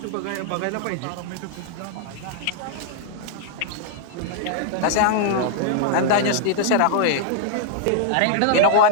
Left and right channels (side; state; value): both; different; correlation -0.01